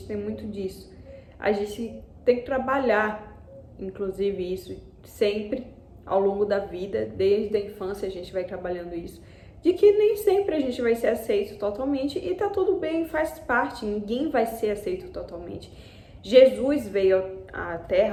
tem muito disso. A gente tem que trabalhar, inclusive, isso sempre ao longo da vida, desde a infância a gente vai trabalhando isso, de que nem sempre a gente vai ser aceito totalmente e tá tudo bem, faz parte, ninguém vai ser aceito totalmente. Jesus veio à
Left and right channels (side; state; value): both; identical; correlation 1.00